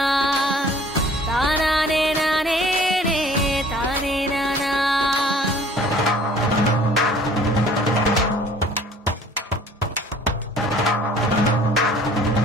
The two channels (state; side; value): normal; both; correlation 0.52